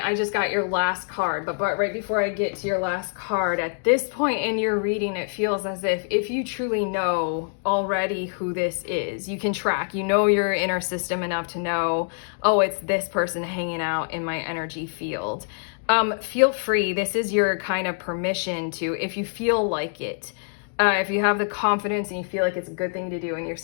I just got your last card, but right before I get to your last card, at this point in your reading, it feels as if you truly know already who this is, you can track, you know your inner system enough to know, oh, it's this person hanging out in my energy field. Feel free, this is your kind of permission to, if you feel like it, if you have the confidence and you feel like it's a good thing to do in your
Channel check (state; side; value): silent; right; digital silence